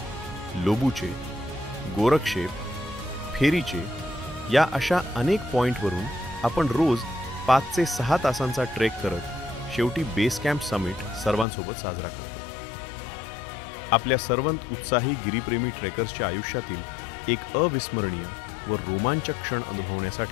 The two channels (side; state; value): right; drops out; at 11.5 s